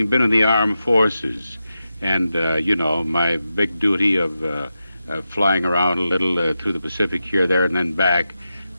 been in the armed forces and, my big duty of flying around a little through the Pacific here, there, and then back,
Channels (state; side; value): inverted; both; correlation -0.90